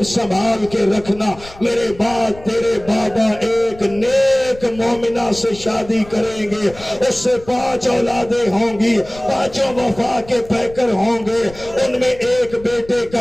संभाल के रखना, मेरे बाद तेरे बाबा एक नेक मोमिना से शादी करेंगे, उससे 5 औलादें होंगी, 5 वफा के पैकर होंगे, उनमें एक बेटे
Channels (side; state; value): left; noise; rumble, 19 dB below the sound